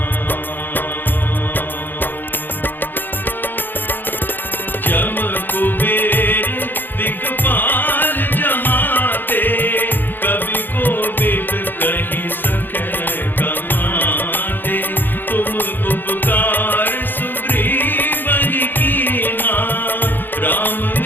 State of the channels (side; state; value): right; late; 0.092 ms